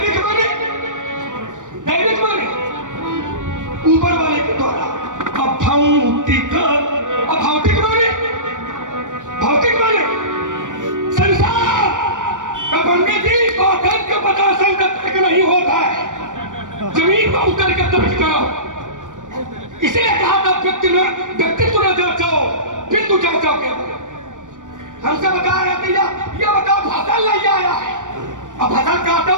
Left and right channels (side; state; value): left; late; 0.87 ms